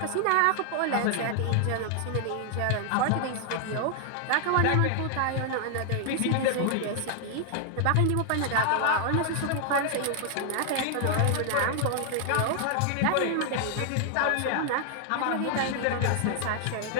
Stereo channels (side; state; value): both; different; correlation 0.00